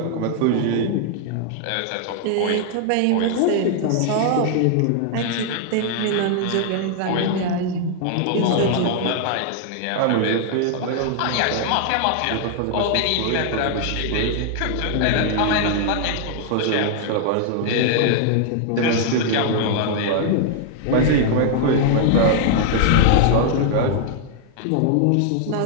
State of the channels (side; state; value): both; different; correlation 0.00